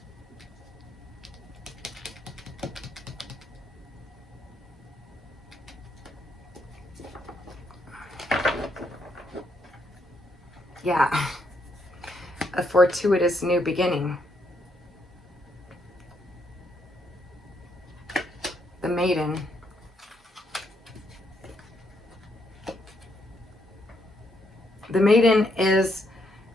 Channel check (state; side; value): normal; both; correlation 0.75